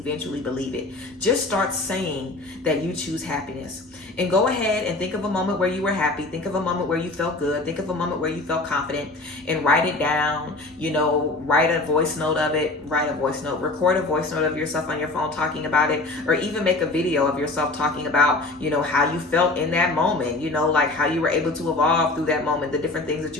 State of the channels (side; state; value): right; quieter; 3.0 dB